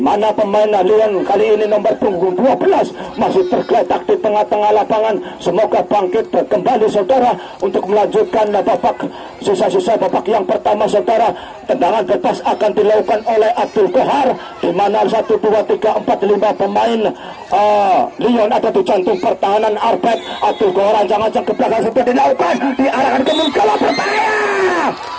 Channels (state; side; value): identical; both; correlation 1.00